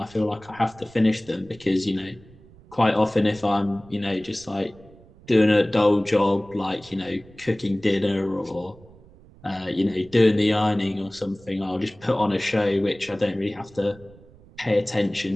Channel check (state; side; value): noise; right; rumble, 24 dB below the sound